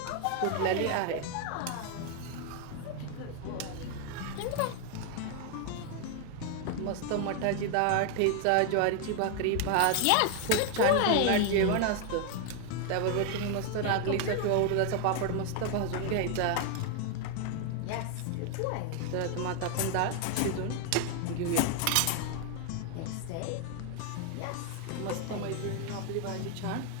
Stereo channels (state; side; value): different; both; correlation 0.00